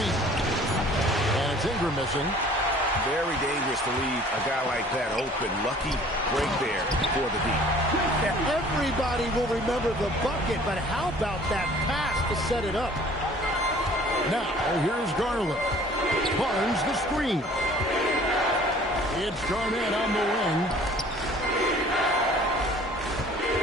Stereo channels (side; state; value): both; normal; correlation 0.51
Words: And it's Ingram missing. Very dangerous to leave a guy like that open. Lucky break there for the deep. Yeah, everybody will remember the bucket, but how about that pass to set it up? Now, here's Garland. Barnes the screen. It's Garnett on the wing.